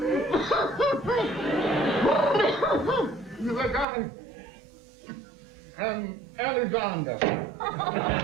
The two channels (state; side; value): drops out; left; at 3.9 s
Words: The guy, Alexander.